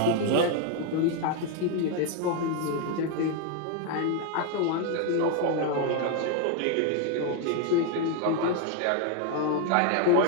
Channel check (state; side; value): different; both; correlation 0.01